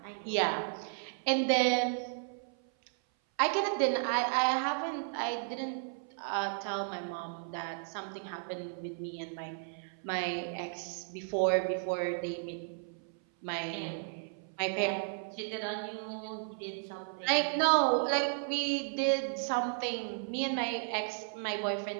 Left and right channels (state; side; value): silent; left; 55 dB below the other